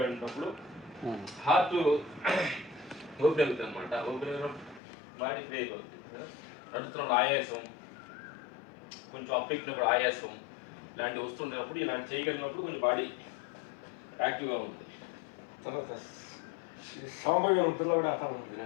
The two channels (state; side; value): drops out; right; at 4.8 s